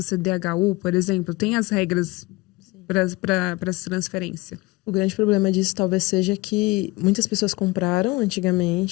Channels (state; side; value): quieter; right; 22.9 dB